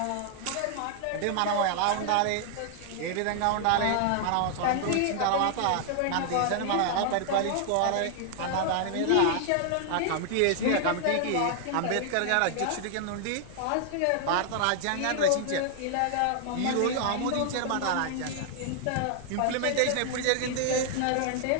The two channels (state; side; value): different; both; correlation 0.00